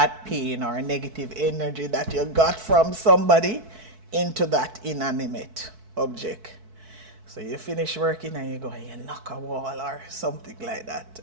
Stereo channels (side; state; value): left; late; 4.6 ms